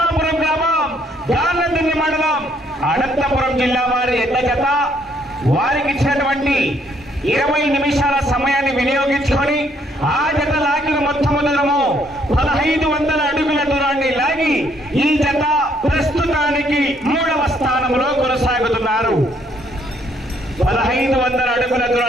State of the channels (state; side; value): normal; both; correlation 0.68